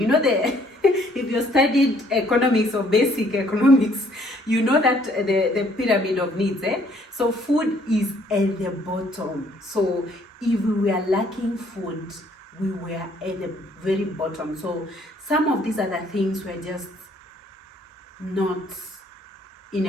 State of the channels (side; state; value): both; normal; correlation 0.63